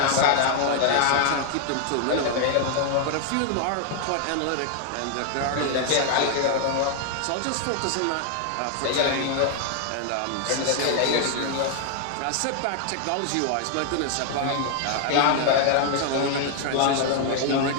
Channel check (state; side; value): different; both; correlation 0.00